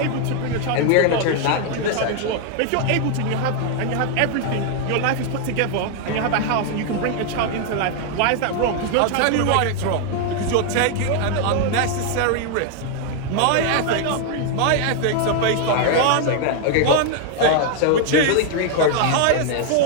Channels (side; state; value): both; different; correlation 0.00